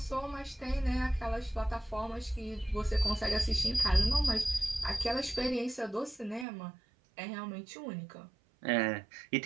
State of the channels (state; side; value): drops out; left; at 6.5 s